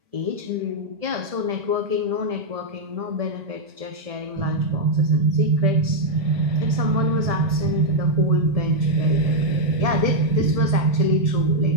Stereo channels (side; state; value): left; late; 1.7 ms